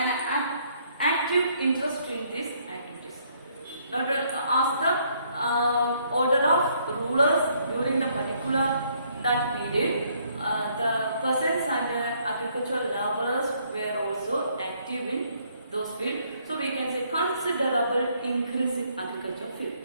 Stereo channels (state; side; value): inverted; both; correlation -0.68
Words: an active interest in these activities. Now to ask the order of rulers during the particular that period, the peasants and agricultural laborers were also active in those fields. So we can say considerable increase in agricultural field.